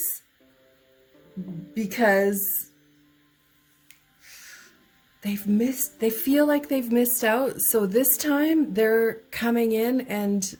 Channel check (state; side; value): identical; both; correlation 1.00